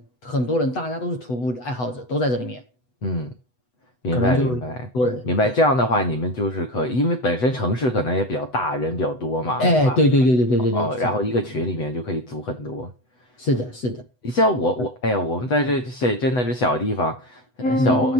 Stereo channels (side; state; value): right; late; 8.0 ms